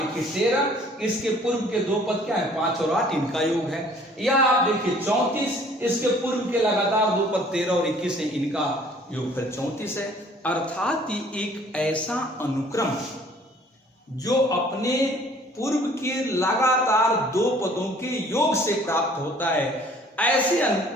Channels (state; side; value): normal; both; correlation 0.55